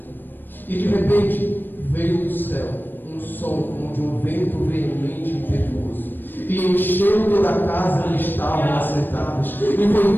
E de repente veio do céu um som como de um vento veemente e impetuoso, e encheu toda a casa onde estavam assentados, e foi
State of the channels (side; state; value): right; late; 0.093 ms